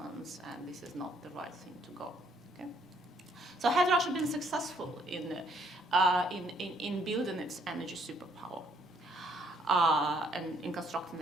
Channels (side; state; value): both; normal; correlation 0.67